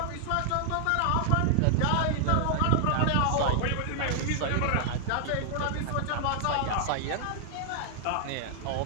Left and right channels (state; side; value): different; both; correlation 0.00